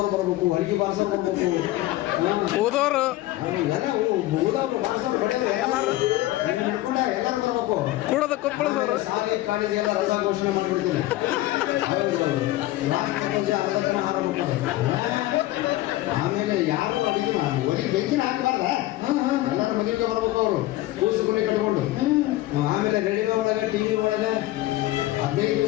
ಬರ್ಬೇಕು, ಅಡಿಗೆ ಬಾರ್ಸೋರು ಬರ್ಬೇಕು, ಊದೋರು ಎಲ್ಲ ಊದೋರು ಬಾರ್ಸೋರು ಹಿಡ್ಕೊಂಡ ಎಲ್ಲರೂ ಬರ್ಬೇಕು. ಕೂಡದ ಕೊಪ್ಪಳದವರು ಶಾಲೆ ಕಾಲೇಜ್ ಎಲ್ಲ ರಜಾ ಘೋಷಣೆ ಮಾಡ್ಬಿಡ್ತೀನಿ. ಆಮೇಲೆ ಯಾರು ಅಡಿಗೆ ಒಳಗೆ ಬೆಂಕಿನ ಹಾಕಬಾರ್ದ, ಎಲ್ಲರೂ ಮದುವೆಗೆ ಬರ್ಬೇಕು. ಅವರು ಕೂಸು ಮನೆ ಕಟ್ಕೊಂಡು ಆಮೇಲೆ ರೇಡಿಯೋ ಒಳಗೆ, TV ಒಳಗೆ 15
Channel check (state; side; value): quieter; right; 16.7 dB